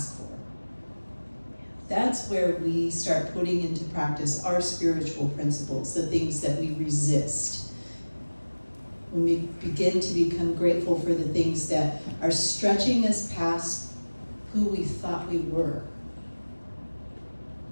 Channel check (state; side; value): inverted; both; correlation -1.00